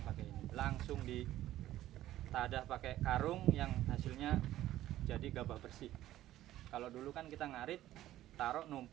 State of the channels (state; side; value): quieter; left; 14.0 dB